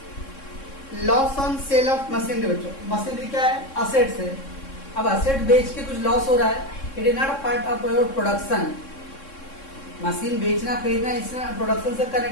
Loss on sale of machinery बच्चों। Machinery क्या है? Assets है। अब asset बेच के कुछ loss हो रहा है, it is not a part of your production. Machine बेचना खरीदना इसमें प्रोडक्शन से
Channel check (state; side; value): late; right; 3.6 ms